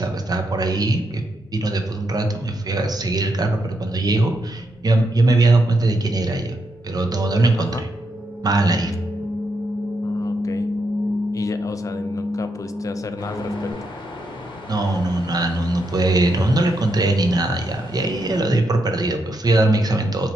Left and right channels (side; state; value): both; normal; correlation 0.81